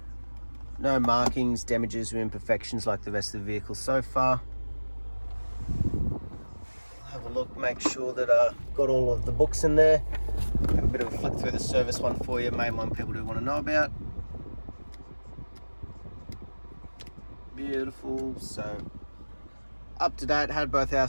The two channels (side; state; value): both; inverted; correlation -1.00